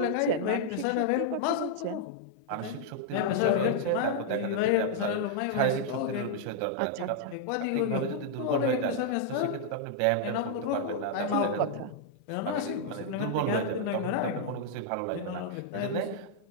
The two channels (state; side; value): different; both; correlation -0.01